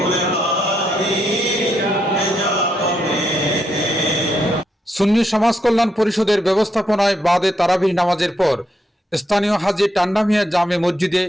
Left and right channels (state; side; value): normal; both; correlation 0.78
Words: সুন্নি সমাজ কল্যাণ পরিষদের ব্যবস্থাপনায় বাদে তারাবিহ নামাজের পর স্থানীয় হাজী টান্ডা মিয়া জামে মসজিদে